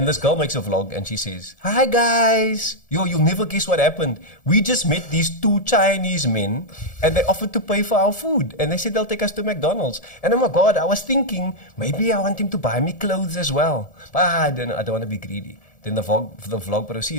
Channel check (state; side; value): late; right; 1.7 ms